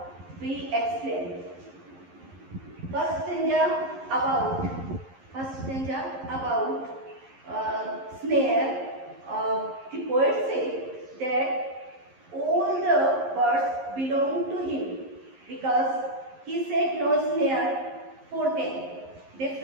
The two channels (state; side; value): late; left; 11 ms